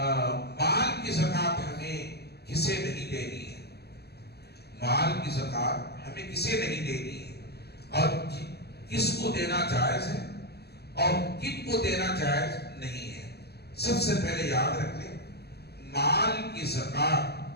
کی زکات ہمیں کسے نہیں دینی ہے، مال کی زکات ہمیں کسے نہیں دینی ہے، اور کس کو دینا جائز ہے اور کن کو دینا جائز نہیں ہے۔ سب سے پہلے یاد رکھ لیں، مال کی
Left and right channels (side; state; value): right; late; 0.47 ms